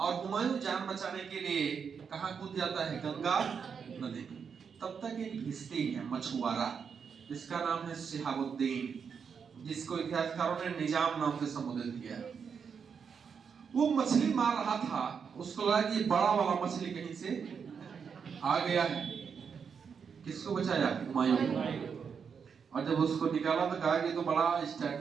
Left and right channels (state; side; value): quieter; left; 6.5 dB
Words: हुमायूं जान बचाने के लिए कहां कूद जाता है? गंगा नदी। तब तक एक भिश्ती है मछुआरा, जिसका नाम है शिहाबुद्दीन, जिसको इतिहासकारों ने निजाम नाम से संबोधित किया। वो मछली मार रहा था, उसको लगा कि बड़ा वाला मछली कहीं से आ गया है। किसको बचाया? हुमायूं को। और जब उसको निकाला तो कहा कि तो बड़ा